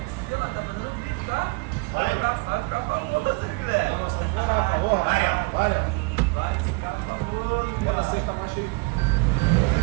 Ela tá fazendo vídeo, tá? Vai ficar famoso, Guilherme. Vai ficar famoso. Ela sei que tá mais cheio.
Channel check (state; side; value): quieter; left; 27.6 dB